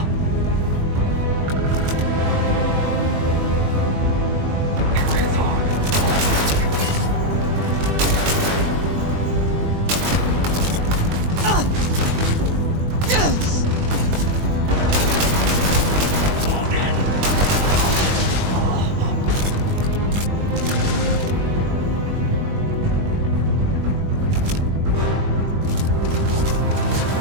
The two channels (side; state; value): left; late; 21 ms